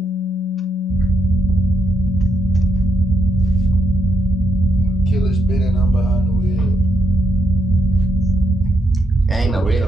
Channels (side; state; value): both; normal; correlation 0.79